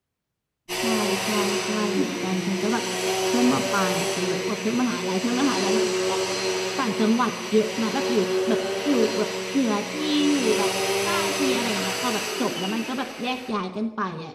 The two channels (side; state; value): both; identical; correlation 1.00